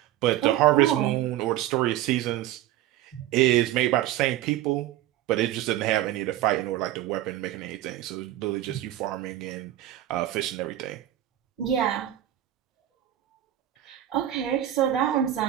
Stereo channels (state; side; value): quieter; left; 13.3 dB